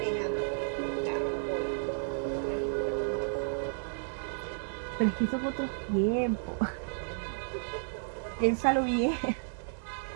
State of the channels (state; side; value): silent; left; 56 dB below the other